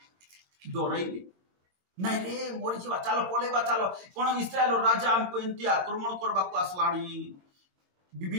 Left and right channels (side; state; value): left; late; 22 ms